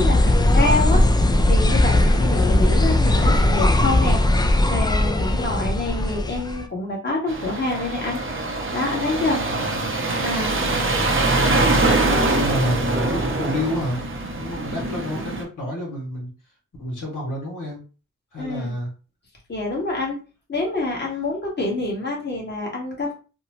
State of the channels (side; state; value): both; normal; correlation 0.60